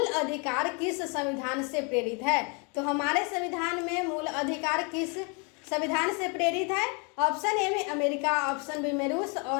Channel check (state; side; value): quieter; right; 34.0 dB